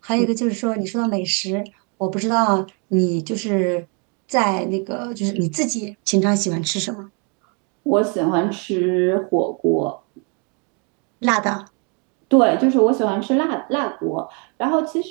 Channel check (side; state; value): left; quieter; 35.5 dB